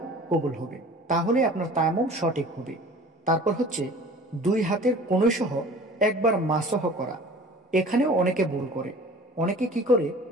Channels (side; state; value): both; normal; correlation 0.44